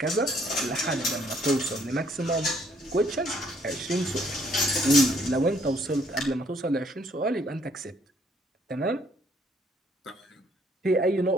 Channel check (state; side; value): normal; both; correlation 0.66